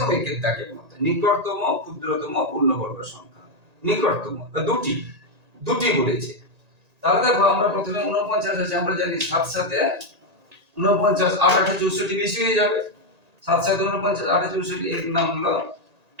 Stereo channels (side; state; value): left; late; 1.8 ms